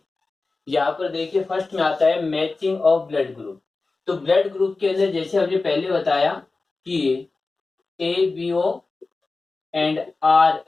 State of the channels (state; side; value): quieter; right; 3.7 dB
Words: यहाँ पर देखिए फर्स्ट में आता है मैचिंग ऑफ ब्लड ग्रुप। तो ब्लड ग्रुप के अंदर जैसे हमने पहले बताया कि A B O and R